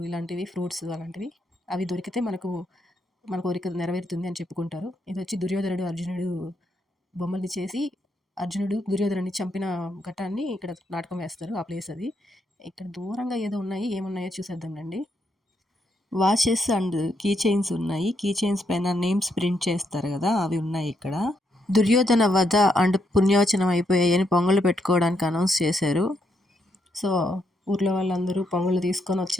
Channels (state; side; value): normal; both; correlation 0.78